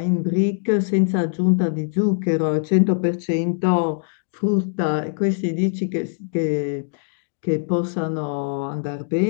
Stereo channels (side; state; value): right; silent; digital silence